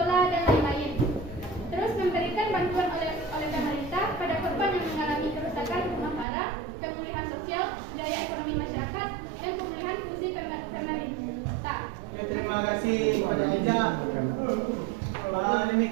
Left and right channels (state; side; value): drops out; left; at 6.2 s